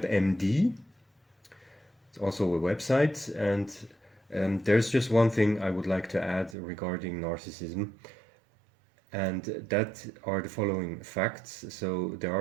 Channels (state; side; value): drops out; left; at 6.6 s